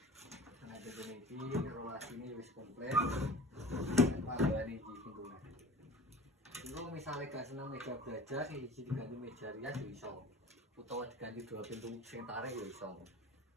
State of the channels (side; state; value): both; normal; correlation 0.40